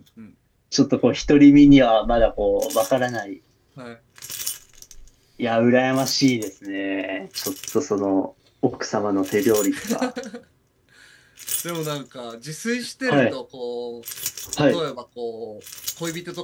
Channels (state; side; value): identical; both; correlation 1.00